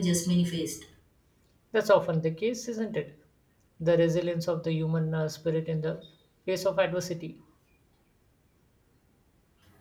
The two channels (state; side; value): identical; both; correlation 1.00